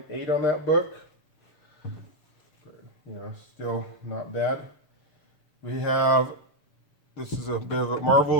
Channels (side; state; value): right; late; 7.0 ms